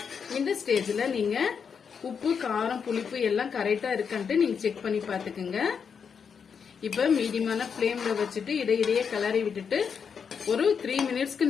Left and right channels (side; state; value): right; quieter; 6.5 dB